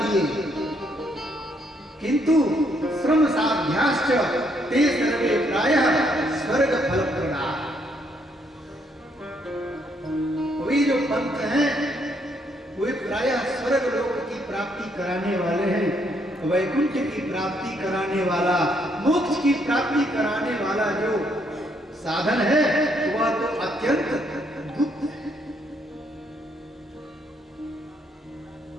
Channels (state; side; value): normal; both; correlation 0.72